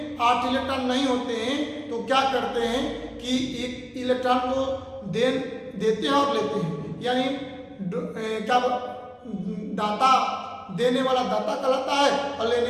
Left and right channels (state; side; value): identical; both; correlation 1.00